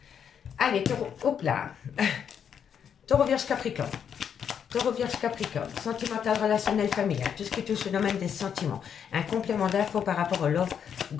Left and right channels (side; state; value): right; quieter; 8.0 dB